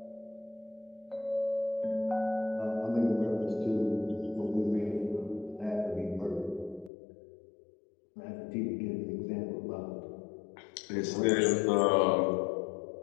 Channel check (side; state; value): right; drops out; at 6.9 s